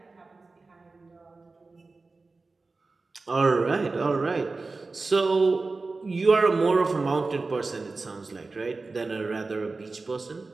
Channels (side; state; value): left; quieter; 3.7 dB